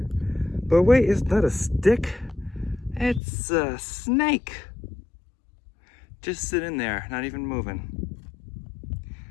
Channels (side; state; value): right; drops out; at 3.2 s